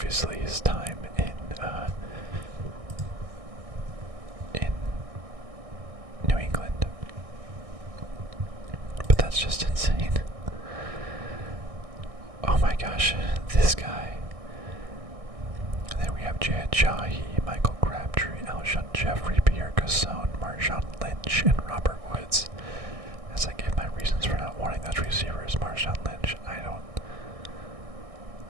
his time in New England. But that's just insane. Oh my gosh, this guy. And then we have Jad Jahi, Michael Crabtree, Alshon Jeffrey, Pierre Gasson, Marshawn Lynch, and Robert Woods. As I give my reasons for not wanting those receivers, Marshawn Lynch, I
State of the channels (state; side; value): late; left; 1.6 ms